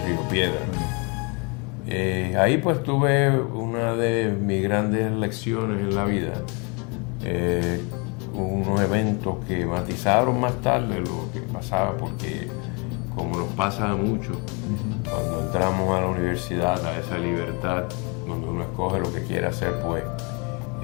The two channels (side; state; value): right; quieter; 32.3 dB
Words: Río Piedra. Ahí pues tuve una de mis grandes lecciones en la vida. Unos eventos que matizaron más tarde lo que pasaba, porque como nos pasa mucho, cuando entramos a la universidad, a esa libertad, donde uno escoge lo que quiere hacer, pues